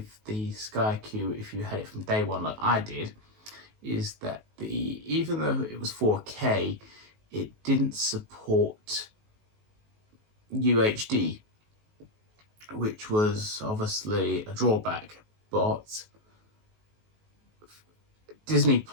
the SkyQ, if you had it from day one like I did, is that even though it was 4K, it didn't support UHD, which was obviously a drawback. But Disney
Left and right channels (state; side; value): late; left; 19 ms